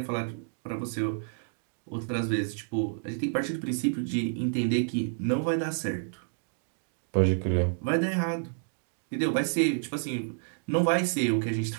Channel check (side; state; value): left; silent; digital silence